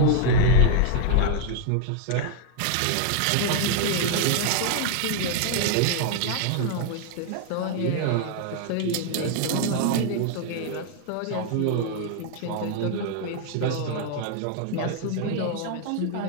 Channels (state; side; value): different; both; correlation 0.00